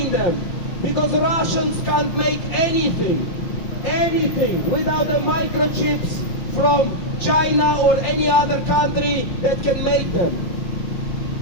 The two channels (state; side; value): late; right; 5.7 ms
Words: them, because Russians can't make anything without the microchips from China or any other country that can make them.